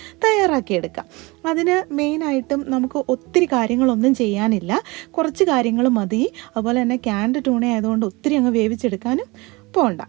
തയ്യാറാക്കിയെടുക്കാം. അതിന് മെയിനായിട്ടും നമുക്ക് ഒത്തിരി കാര്യങ്ങളൊന്നും ചെയ്യാനില്ല, കുറച്ച് കാര്യങ്ങൾ മതി. അതുപോലെ തന്നെ ക്യാൻഡ് ട്യൂണ ആയതുകൊണ്ട് ഒത്തിരി അങ്ങ് വേവിച്ചെടുക്കാനും പോകണ്ട.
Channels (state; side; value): quieter; left; 24.3 dB